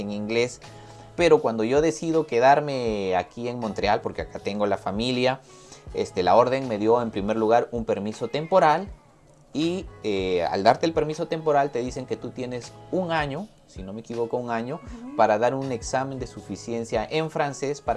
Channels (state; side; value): identical; both; correlation 1.00